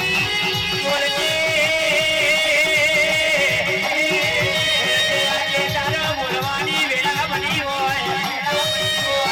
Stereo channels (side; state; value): both; identical; correlation 1.00